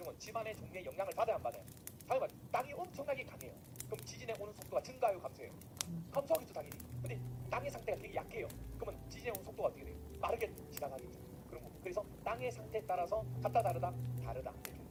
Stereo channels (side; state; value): both; identical; correlation 1.00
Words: 지반의 종류에 영향을 받아야 안 받아요? 당연히 땅이 엄청나게 강해요. 그럼 지진에 오는 속도가 증가해요, 감소해요? 감소하겠죠, 당연히. 근데 땅의 상태가 되게 약해요. 그러면 지진에 오는 속도가 어떻게 돼요? 빠르게 지나가겠죠. 그런 거. 그래서 땅의 상태에 따라서 같다 다르다 다르다. 이렇게.